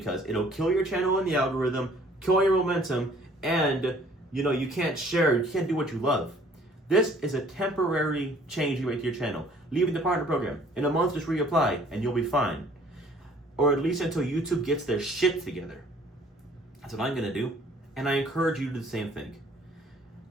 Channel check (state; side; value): normal; both; correlation 0.56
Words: it'll kill your channel in the algorithm, kill your momentum, and you can't share, you can't do what you love. This is a temporary change you make to your channel. Leaving the partner program. In a month, just reapply and you'll be fine. Or at least until YouTube gets their shit together. That's what I'm gonna do. And I encourage you to do the same thing.